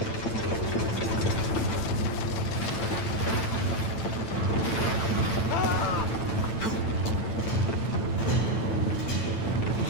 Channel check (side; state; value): right; late; 9.0 ms